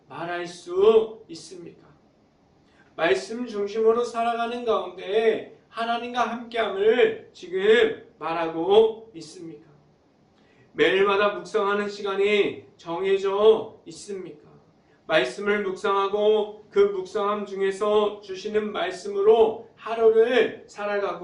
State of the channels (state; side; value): identical; both; correlation 1.00